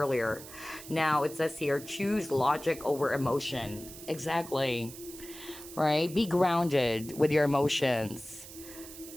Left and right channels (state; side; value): noise; right; hiss, 15 dB below the sound